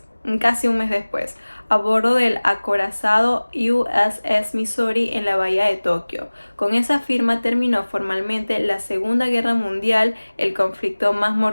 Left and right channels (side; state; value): both; inverted; correlation -1.00